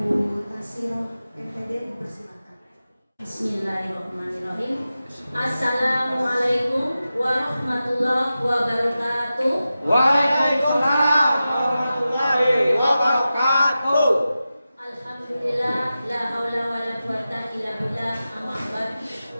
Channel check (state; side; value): inverted; both; correlation -0.93